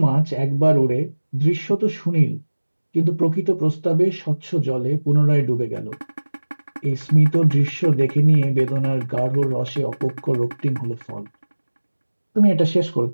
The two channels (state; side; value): inverted; both; correlation -1.00